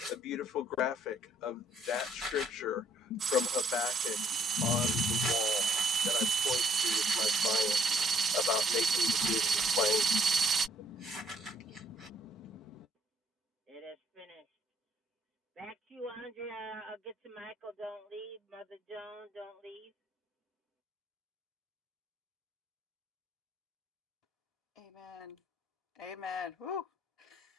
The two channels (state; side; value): normal; both; correlation 0.66